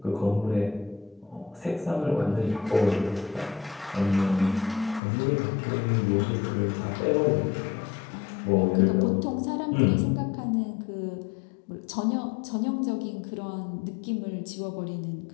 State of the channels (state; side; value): drops out; right; at 5.0 s